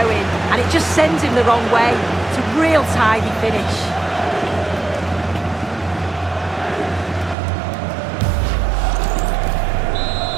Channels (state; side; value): drops out; left; at 7.4 s